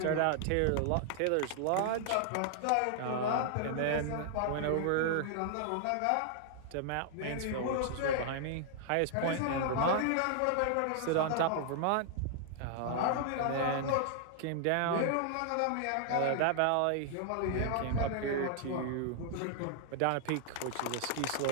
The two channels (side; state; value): both; different; correlation 0.00